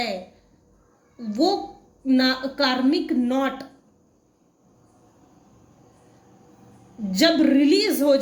वो कार्मिक नॉट जब रिलीज हो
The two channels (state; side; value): identical; both; correlation 1.00